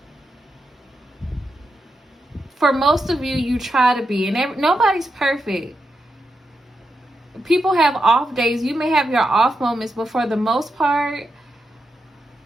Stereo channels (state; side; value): normal; both; correlation 0.86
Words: For most of you, you try to be, and nobody's perfect. People have off days. You may have your off moments, but for the most part,